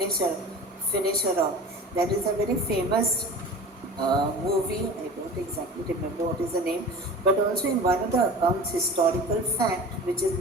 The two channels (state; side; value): normal; both; correlation 0.37